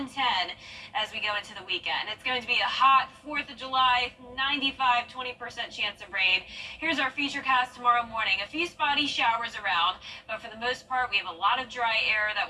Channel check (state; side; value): identical; both; correlation 1.00